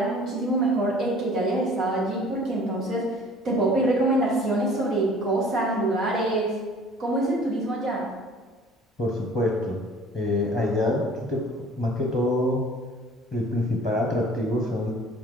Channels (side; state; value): both; normal; correlation 0.50